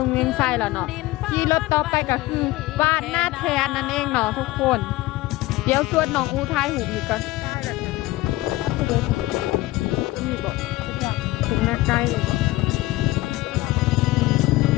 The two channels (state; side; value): quieter; right; 18.5 dB